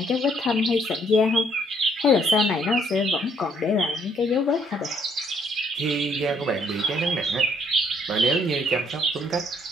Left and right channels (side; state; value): both; normal; correlation 0.67